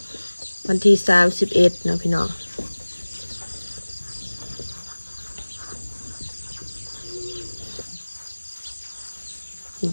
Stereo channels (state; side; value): inverted; both; correlation -1.00